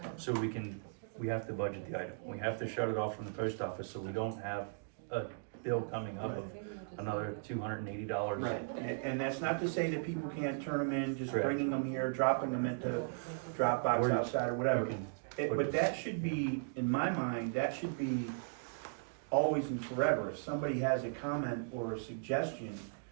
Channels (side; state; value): left; silent; digital silence